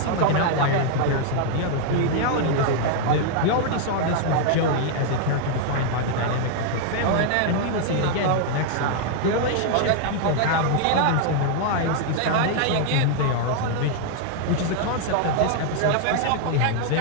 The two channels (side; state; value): both; different; correlation 0.00